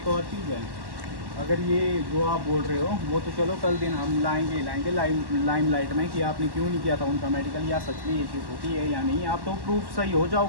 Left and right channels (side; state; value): left; late; 1.1 ms